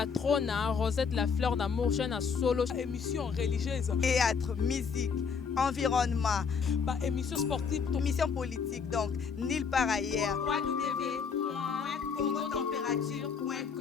Rosette la fleur d'amour, chaîne à solo. Émission religieuse. Théâtre, musique, environnement. Bah, émission sportive. Émission politique, donc, nulle part ailleurs.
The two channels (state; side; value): quieter; right; 6.0 dB